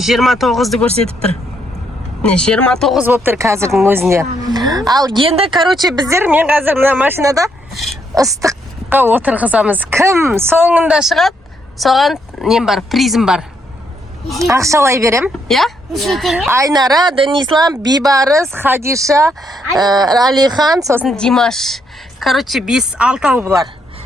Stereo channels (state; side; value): normal; both; correlation 0.75